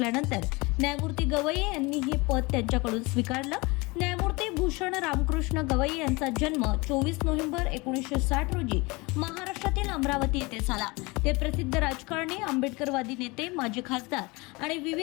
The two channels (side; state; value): right; quieter; 25.2 dB